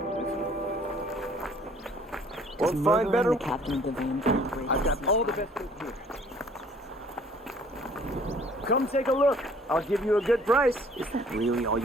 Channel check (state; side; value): normal; both; correlation 0.56